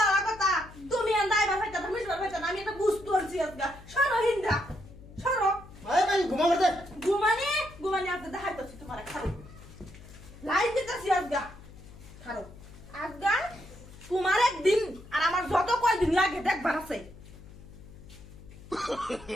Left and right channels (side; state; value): left; noise; hum, 18 dB below the sound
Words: কথা তুমি আন্দাই বাবা কথা তুমি বাবা আমি এটা বুঝতে পারছি আজকে সরো হিন্দা সরো আরে ভাই ঘুমাবে দে ঘুমানি আজকে দেখাইতেছি তোমার খারো লাইন দিতেছি আজকে খারো আজকে তোমার একদিন আর আমার যত কয়দিন লাগে দেখবার আছে